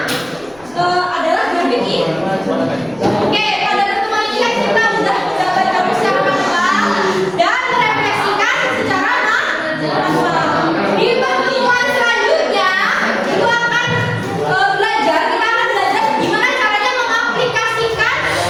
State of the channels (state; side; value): noise; left; rumble, 28 dB below the sound